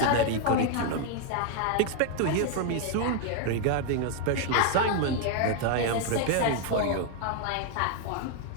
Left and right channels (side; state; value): both; different; correlation 0.00